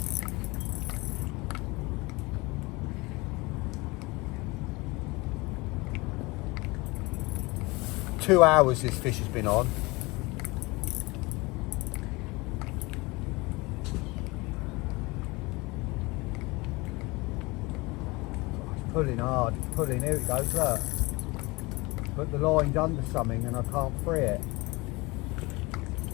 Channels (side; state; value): right; quieter; 23.9 dB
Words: Two hours this fish has been on. It's pulling hard, it's pulling, here it goes, look. But the line's under something and I can't free it.